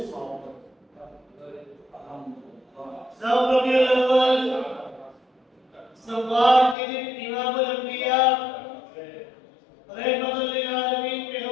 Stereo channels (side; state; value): right; drops out; at 6.8 s